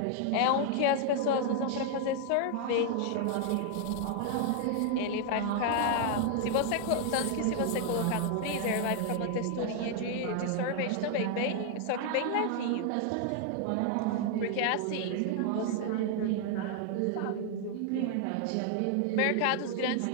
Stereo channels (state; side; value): different; both; correlation 0.00